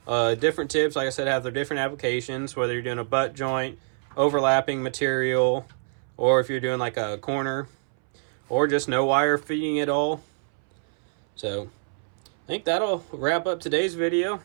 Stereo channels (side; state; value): left; silent; 61 dB below the other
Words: Different tips, like I said, have their different applications, whether you're doing a butt joint, overlapping material, or if you're doing like a corner, or just no wire feeding at all. So I think that'll wrap up today's video.